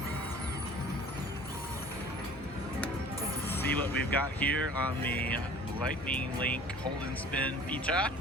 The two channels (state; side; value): normal; both; correlation 0.47